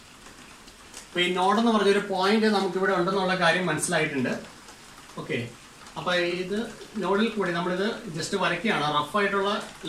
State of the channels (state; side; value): identical; both; correlation 1.00